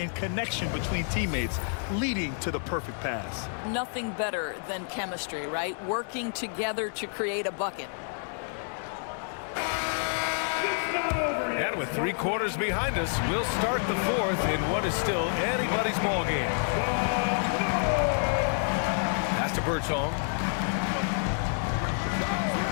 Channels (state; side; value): silent; right; 59 dB below the other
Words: connection between teammates leading to the perfect pass. Nothing better than chemistry, right? Working together to create a bucket. And with 3 quarters behind us, we'll start the 4th in what is still anybody's ball game. Pass to Birdsong.